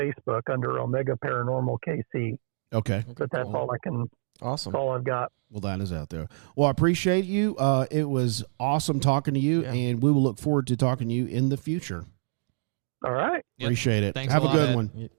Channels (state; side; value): silent; left; digital silence